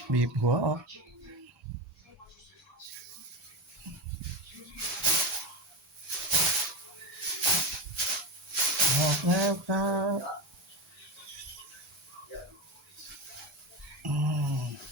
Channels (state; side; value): normal; both; correlation 0.20